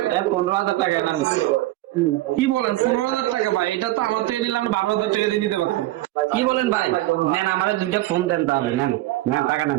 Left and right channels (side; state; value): left; quieter; 17.0 dB